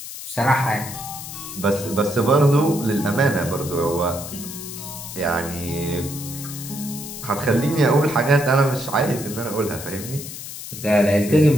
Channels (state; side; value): noise; left; hiss, 10 dB below the sound